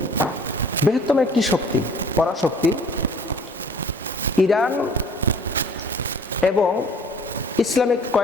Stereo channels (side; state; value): both; normal; correlation 0.52